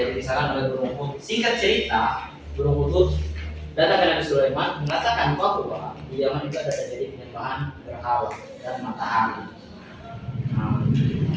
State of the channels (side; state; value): both; identical; correlation 1.00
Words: oleh Burung Hud. Singkat cerita, Burung Hud datang ke Nabi Sulaiman mengatakan bahwa di Yaman itu ada terjadi penyembahan berhala dan matahari. Nah,